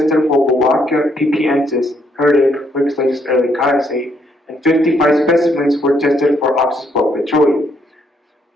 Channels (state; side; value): normal; both; correlation 0.72